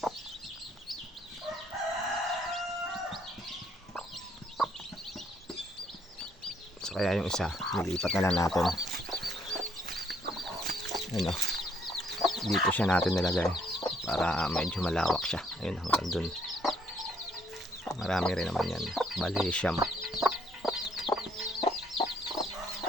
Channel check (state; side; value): normal; both; correlation 0.68